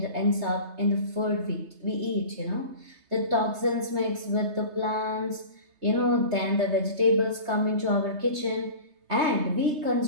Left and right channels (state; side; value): late; left; 3.2 ms